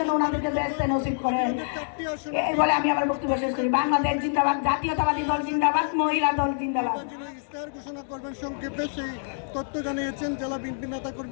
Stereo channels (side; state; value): right; silent; digital silence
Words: ওনাদেরকে বেহেশতে নসিব করেন। এই বলে আমি আমার বক্তব্য শেষ করি। বাংলাদেশ জিন্দাবাদ, জাতীয়তাবাদী দল জিন্দাবাদ, মহিলা দল জিন্দাবাদ। ইস্তাহার ঘোষণা করবেন সংক্ষেপে, সেই তথ্য জানিয়েছেন জেলা বিএনপি নেতা